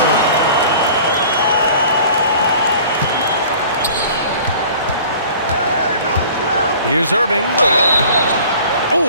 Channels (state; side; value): inverted; both; correlation -0.46